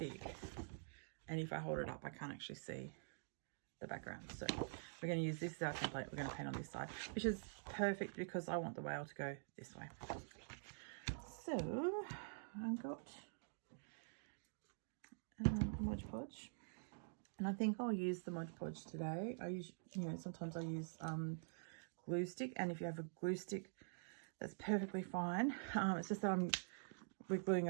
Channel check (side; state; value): left; silent; digital silence